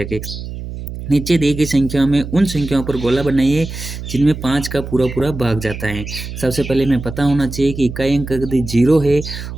के। नीचे दी गई संख्याओं में उन संख्याओं पर गोला बनाइए जिनमें 5 का पूरा पूरा भाग जाता है। सबसे पहले हमें पता होना चाहिए कि इकाई अंक यदि 0 है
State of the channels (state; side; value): noise; right; hum, 9 dB below the sound